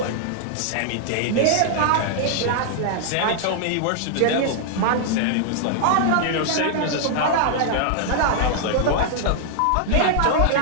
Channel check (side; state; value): both; different; correlation -0.01